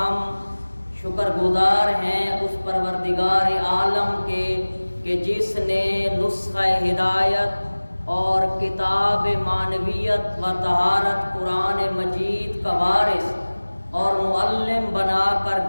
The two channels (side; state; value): both; inverted; correlation -1.00